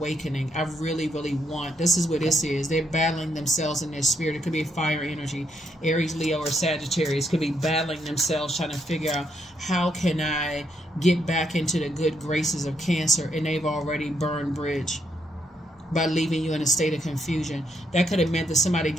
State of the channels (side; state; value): both; normal; correlation 0.76